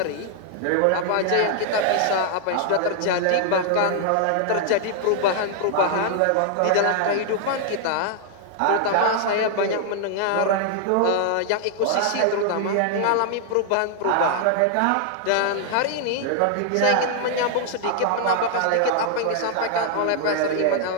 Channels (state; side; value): different; both; correlation 0.00